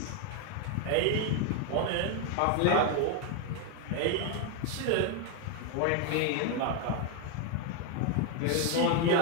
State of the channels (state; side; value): different; both; correlation 0.01